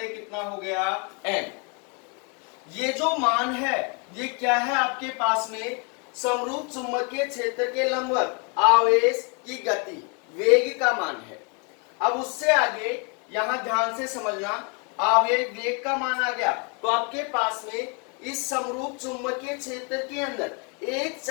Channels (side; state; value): right; quieter; 34.7 dB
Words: कितना हो गया, m। ये जो मान है ये क्या है आपके पास में, समरूप चुंबकीय क्षेत्र के लंबवत आवेश की गति, वेग का मान है। अब उससे आगे यहां ध्यान से समझना, आवेग वेग का मान आ गया तो आपके पास में इस समरूप चुंबकीय क्षेत्र के अंदर एक